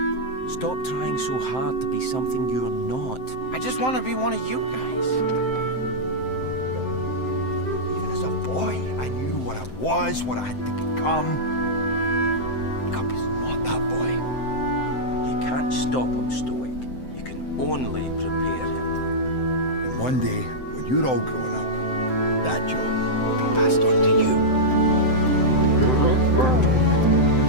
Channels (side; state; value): right; late; 7.8 ms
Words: Stop trying so hard to be something you're not. I just want to be one of you guys. Even as a boy, I knew what I was, what I had to become. Hiccup is not that boy. You can't stop him, Stoic. You can only prepare him. And one day, when you're all grown up, that job will be passed on to you.